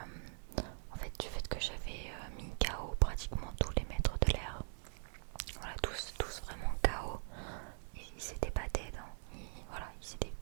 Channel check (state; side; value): silent; left; 50 dB below the other